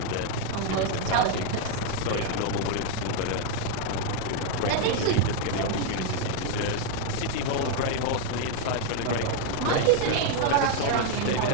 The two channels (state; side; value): different; both; correlation 0.01